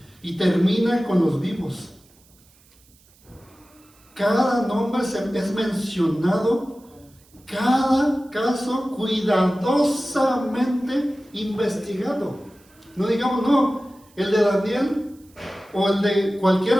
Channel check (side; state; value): right; noise; hiss, 30 dB below the sound